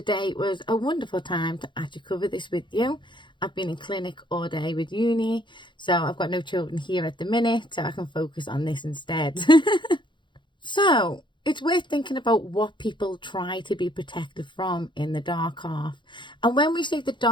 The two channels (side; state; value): right; late; 0.23 ms